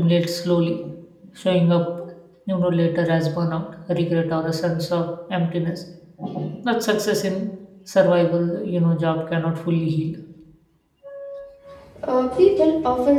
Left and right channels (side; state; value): both; identical; correlation 1.00